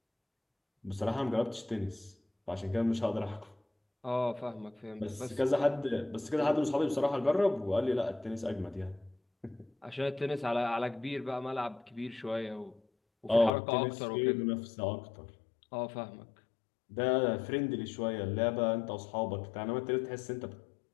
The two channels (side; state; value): right; drops out; at 13.5 s